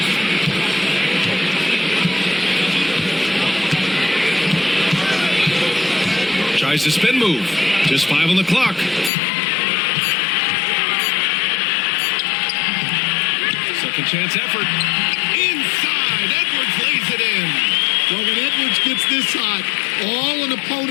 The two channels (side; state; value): right; drops out; at 9.1 s